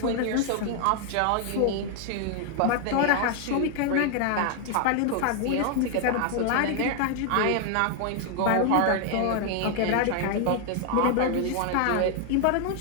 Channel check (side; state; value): both; different; correlation 0.00